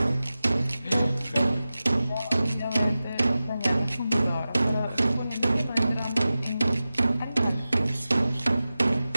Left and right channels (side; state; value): both; inverted; correlation -0.95